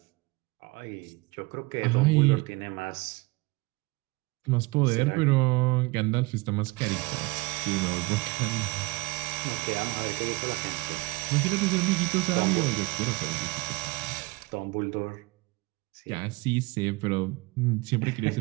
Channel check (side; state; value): left; quieter; 24.0 dB